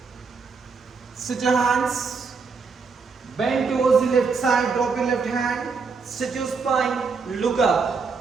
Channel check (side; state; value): left; quieter; 4.9 dB